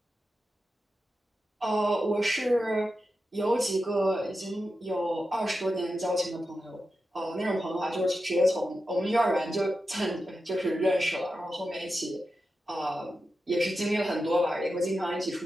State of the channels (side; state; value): both; normal; correlation 0.90